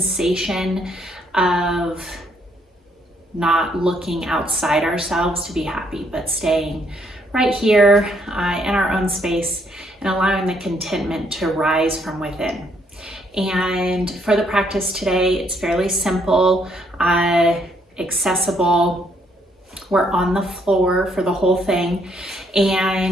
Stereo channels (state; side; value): normal; both; correlation 0.70